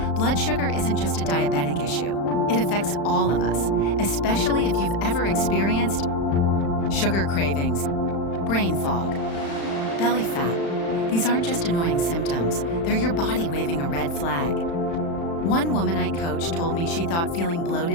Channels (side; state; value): right; late; 35 ms